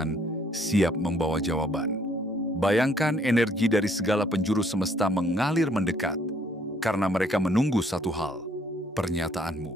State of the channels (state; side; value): normal; both; correlation 0.64